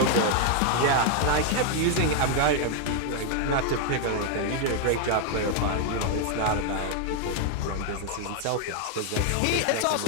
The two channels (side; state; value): both; different; correlation 0.00